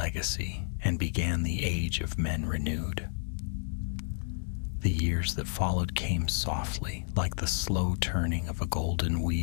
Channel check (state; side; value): silent; right; 57 dB below the other